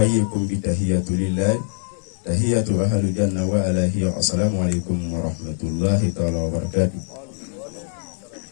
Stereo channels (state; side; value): silent; right; 64 dB below the other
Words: بتحية لله تحية أهل الجنة وعلى هي السلام عليكم ورحمة الله تعالى وبركاته.